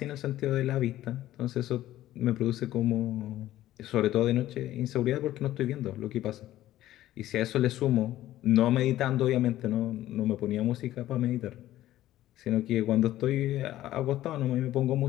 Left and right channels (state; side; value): quieter; right; 14.2 dB